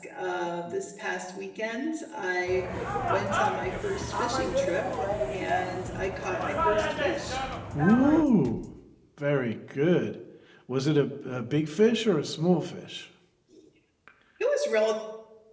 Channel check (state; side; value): identical; both; correlation 1.00